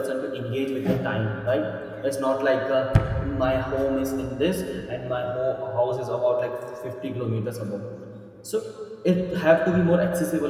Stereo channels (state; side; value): identical; both; correlation 1.00